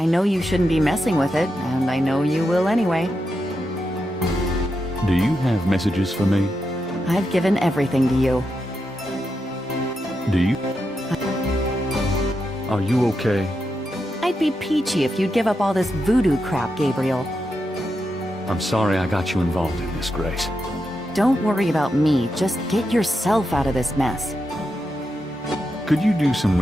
know you shouldn't be messing with it, and I know you will anyway. Do you have messages for me? I've given everything to you. Do you? Are you okay? I'd be peachy if you'd give up all this voodoo crap, Gabriel. I'm sorry I got you involved in this, Grace. Don't worry about me, just get yourself out of this mess. Could you do some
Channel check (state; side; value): normal; both; correlation 0.86